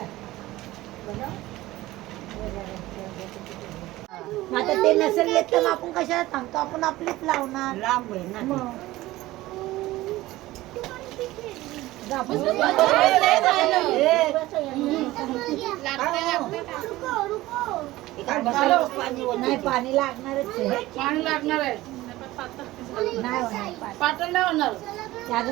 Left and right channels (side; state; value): left; quieter; 17.4 dB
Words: आता ते नसेल येत तर आपण कशाला सांगतो, आपण आपलीच लावणार. लांब आहे ना नाही पाणी लागणारच आहे. पाणी लागणार आहे. नाही होणार पातळ नाही होणार. ते